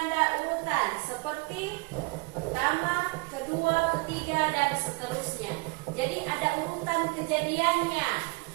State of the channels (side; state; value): left; quieter; 26.4 dB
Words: urutan seperti pertama, kedua, ketiga, dan seterusnya. Jadi ada urutan kejadiannya.